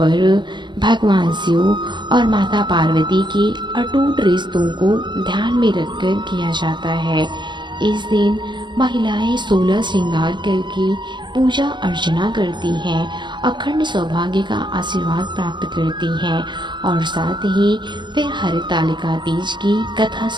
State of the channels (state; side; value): late; left; 0.22 ms